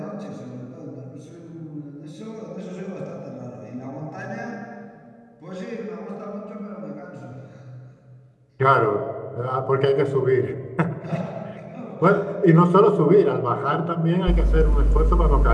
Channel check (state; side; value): identical; both; correlation 1.00